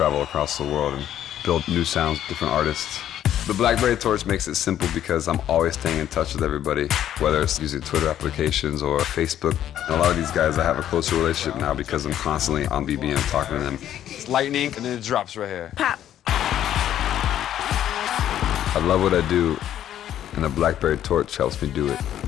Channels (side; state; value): right; quieter; 11.2 dB